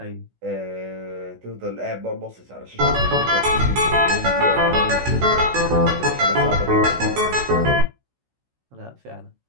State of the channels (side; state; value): left; late; 16 ms